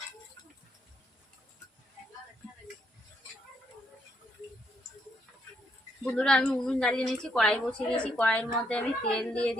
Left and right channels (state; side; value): normal; both; correlation 0.75